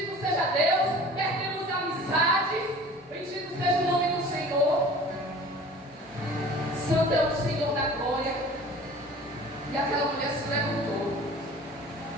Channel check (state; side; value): normal; both; correlation 0.44